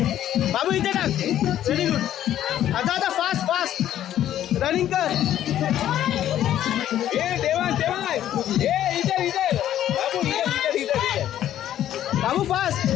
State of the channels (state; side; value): quieter; right; 11.7 dB